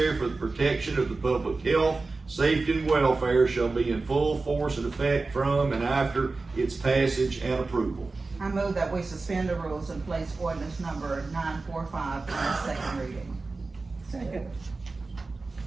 for the protection of the public health, safety, and welfare, shall be in full force and effect from and after its passage and approval. I move that we suspend the rules and place ordinance number 945 on its second reading. Second.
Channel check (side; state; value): left; quieter; 3.7 dB